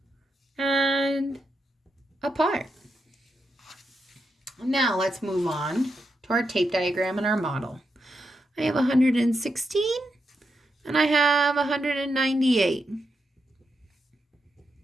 and a part. Now let's move on to our tape diagram and our model. I have 116 and I have 198.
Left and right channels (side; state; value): both; normal; correlation 0.84